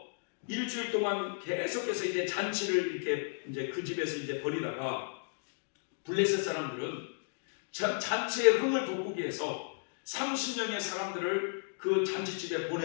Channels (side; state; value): right; silent; digital silence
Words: 일주일 동안 계속해서 이제 잔치를 이렇게 이제 그 집에서 이제 벌이다가 블레셋 사람들은 잔치의 흥을 돋구기 위해서 30명의 사람들을 그 잔치집에